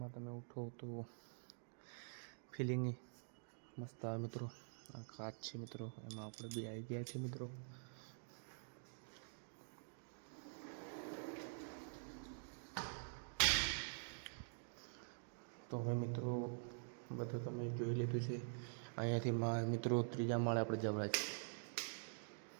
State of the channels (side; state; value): left; silent; digital silence